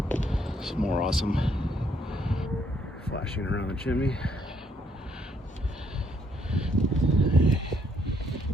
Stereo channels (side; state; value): both; normal; correlation 0.70